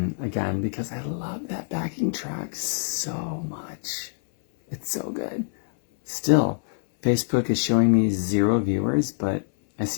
again because I love that backing track so much. It's so good. Still, Facebook is showing me 0 viewers, but I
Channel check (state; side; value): silent; right; 62 dB below the other